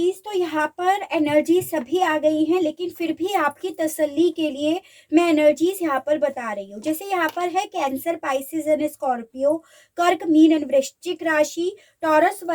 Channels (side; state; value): both; identical; correlation 1.00